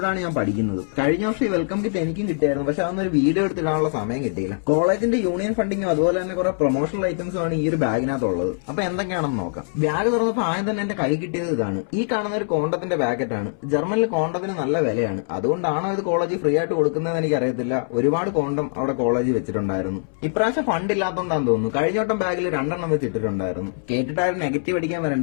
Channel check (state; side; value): silent; right; 63 dB below the other